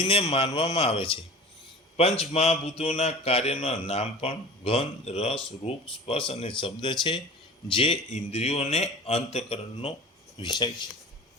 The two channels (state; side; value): normal; both; correlation 0.39